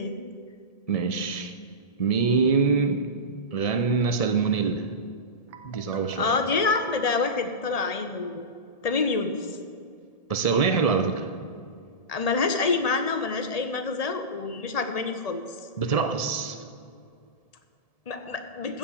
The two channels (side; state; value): right; late; 1.7 ms